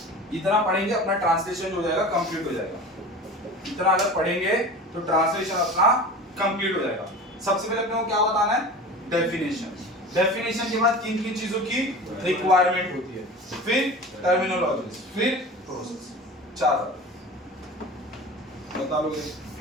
इतना पढ़ेंगे अपना ट्रांसलेशन हो जाएगा, कंप्लीट हो जाएगा। इतना अगर पढ़ेंगे तो ट्रांसलेशन अपना कंप्लीट हो जाएगा। सबसे पहले अपने को क्या बताना है? डेफिनेशन। डेफिनेशन के बाद किन किन चीजों की रिक्वायरमेंट होती है, फिर टर्मिनोलॉजीज, फिर प्रोसेस। 4 बता लोगे?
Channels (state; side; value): normal; both; correlation 0.35